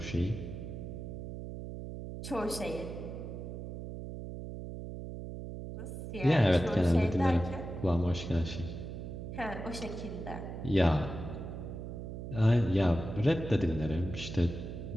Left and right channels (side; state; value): right; noise; hum, 8 dB below the sound